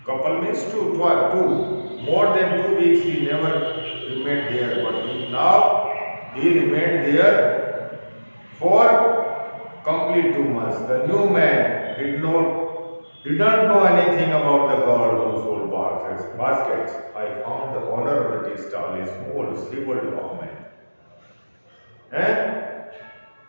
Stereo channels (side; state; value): both; inverted; correlation -1.00